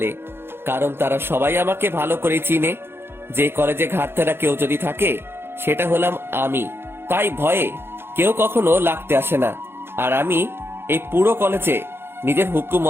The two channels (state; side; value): late; left; 0.11 ms